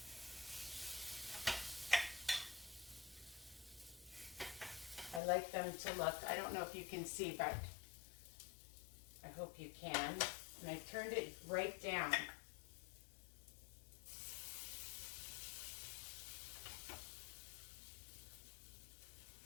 I like them to look, I don't know if you can see, but I hope you can. And I turned it right down.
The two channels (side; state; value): right; drops out; at 5.2 s